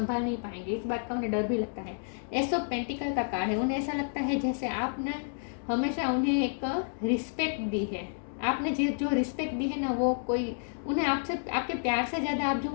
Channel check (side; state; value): right; silent; digital silence